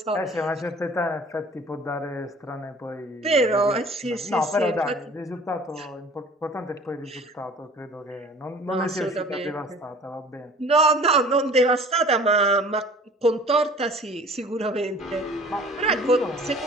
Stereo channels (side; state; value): both; normal; correlation 0.48